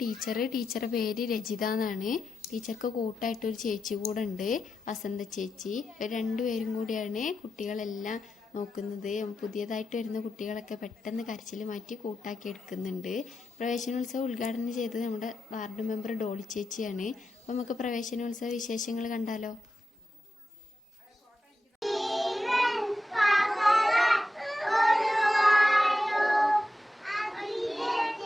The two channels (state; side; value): normal; both; correlation 0.89